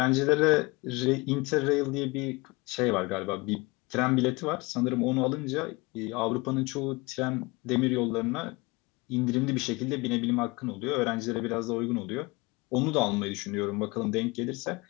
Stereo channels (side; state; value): right; quieter; 24.8 dB